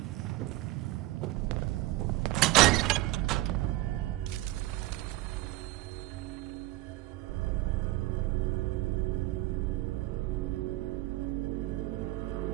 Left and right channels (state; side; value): quieter; left; 18.1 dB